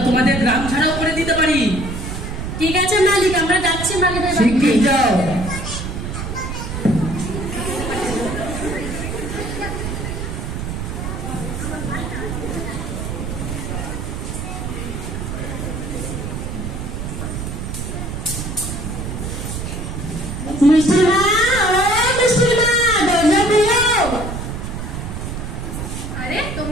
তোমাদের গ্রাম ছাড়াও করে দিতে পারি। ঠিক আছে মালিক, আমরা যাচ্ছি মালিকের বাড়ি। শিগগির যাও। আরে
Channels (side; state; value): right; noise; rumble, 5 dB below the sound